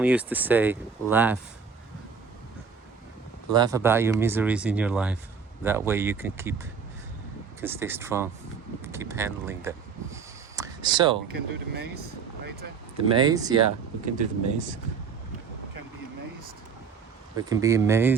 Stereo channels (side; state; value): left; quieter; 5.9 dB